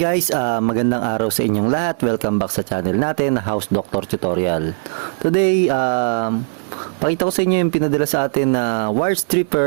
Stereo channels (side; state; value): left; silent; 67 dB below the other